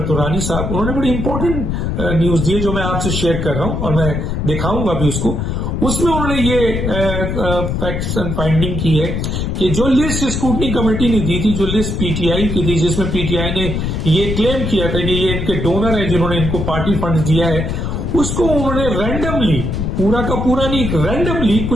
तुरानी साहब, उन्होंने बड़ी इंपॉर्टेंट न्यूज दी है जो मैं आपसे शेयर कर रहा हूं और मैं दिखाऊंगा भी उसको। उसमें उन्होंने ये फैक्ट्स एंड फाइंडिंग की है कि जो लिस्ट स्क्रूटनी कमेटी ने दी थी, जो लिस्ट पीटीआई की थी, जिसमें पीटीआई ने ये क्लेम किया था कि ये इनके डोनर है जिन्होंने इनको पार्टी फंड दिया है, उसको उन्होंने रैंडमली, पूरा का पूरा नहीं, रैंडमली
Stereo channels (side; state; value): left; noise; rumble, 2 dB below the sound